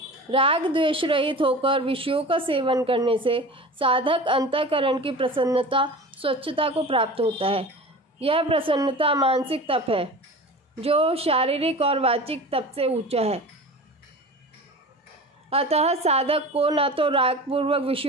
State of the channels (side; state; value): both; normal; correlation 0.35